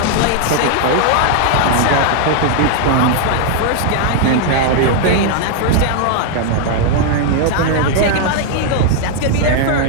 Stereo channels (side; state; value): both; different; correlation 0.00